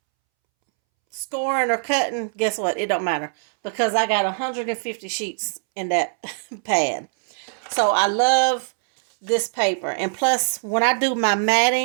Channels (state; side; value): silent; left; 64 dB below the other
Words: scoring or cutting, guess what? It don't matter. Because I got 150 sheets in that pad. So I love this paper. And plus, when I do my